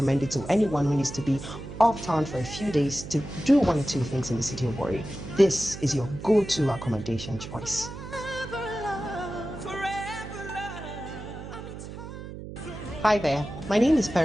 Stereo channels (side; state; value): right; noise; hum, 11 dB below the sound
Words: it to anyone who needs to be off town for a few days to do one or two things in the city of Warri. This is your go-to accommodation choice. Hi there, my name is